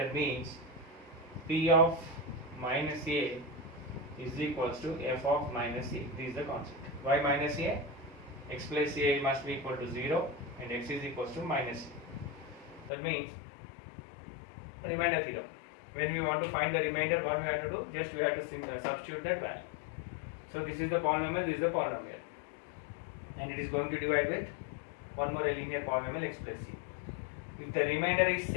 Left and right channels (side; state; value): right; drops out; at 12.9 s